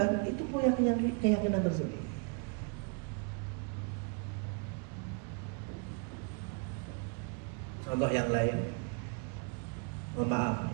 itu punya keyakinan tersebut. Contoh yang lain, maaf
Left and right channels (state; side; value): quieter; left; 33.7 dB